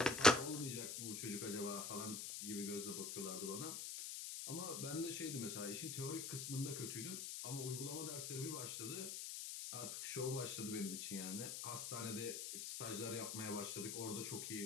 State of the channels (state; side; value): noise; left; hiss, 4 dB below the sound